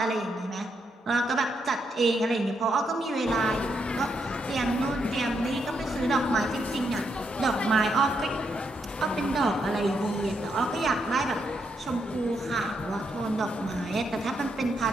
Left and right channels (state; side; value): normal; both; correlation 0.79